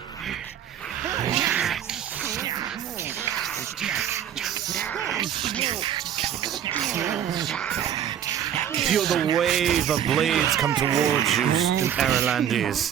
Feel the wave of blades come towards you,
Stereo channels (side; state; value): left; quieter; 9.8 dB